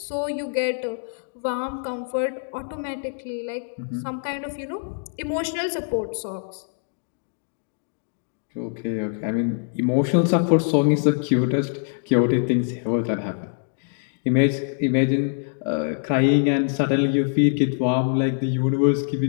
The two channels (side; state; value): right; silent; digital silence